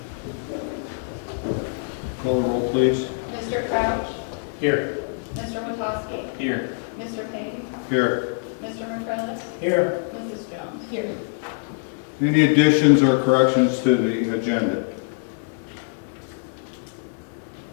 Call the roll, please. Mr. Crouch? Here. Mr. Witowski? Here. Mr. Payne? Here. Mr. McCrillis? Here. Mrs. Jones? Here. Any additions or corrections to the agenda?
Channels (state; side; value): silent; right; 58 dB below the other